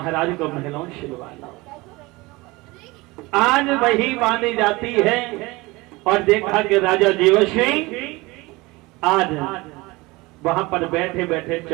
को महलों छिलवा लाओ। आज वही बांधी जाती है और देखा कि राजा जीवसिंह आज वहां पर बैठे बैठे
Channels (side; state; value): left; quieter; 22.6 dB